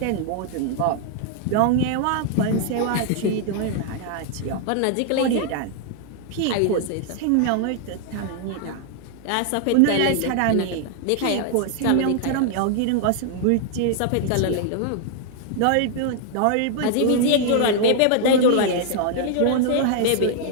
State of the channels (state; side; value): different; both; correlation 0.00